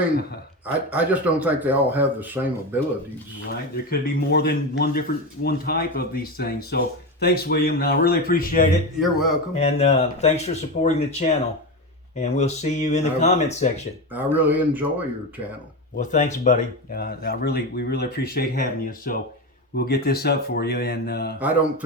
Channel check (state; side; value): normal; both; correlation 0.18